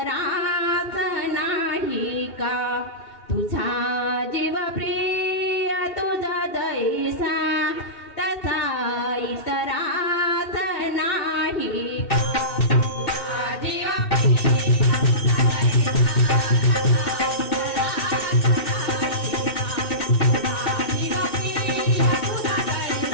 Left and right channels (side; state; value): right; late; 2.7 ms